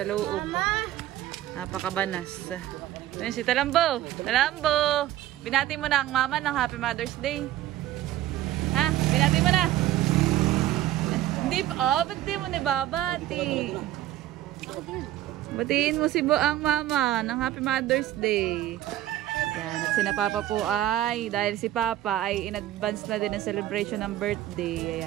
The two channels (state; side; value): quieter; left; 13.8 dB